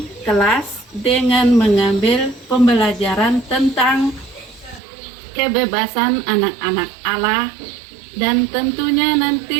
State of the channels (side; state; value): left; drops out; at 4.8 s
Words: kelas dengan mengambil pembelajaran tentang kebebasan anak-anak Allah, dan tentunya